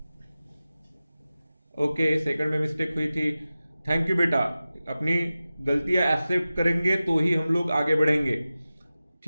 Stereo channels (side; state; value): both; inverted; correlation -0.95